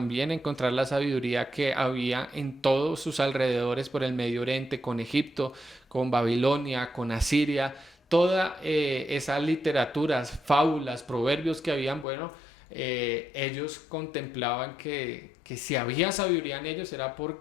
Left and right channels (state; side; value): drops out; right; at 12.1 s